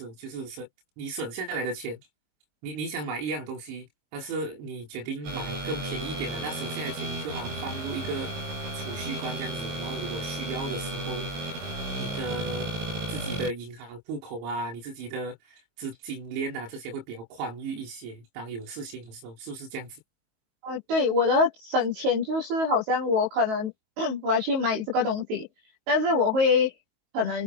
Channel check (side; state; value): left; late; 22 ms